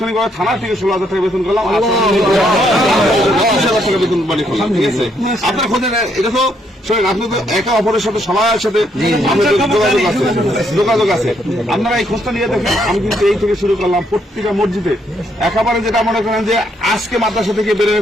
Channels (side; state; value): both; normal; correlation 0.73